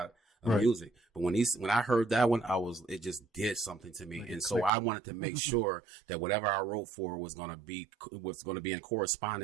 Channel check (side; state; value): left; drops out; at 4.7 s